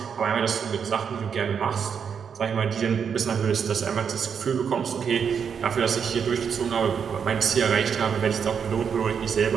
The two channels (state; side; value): quieter; left; 7.0 dB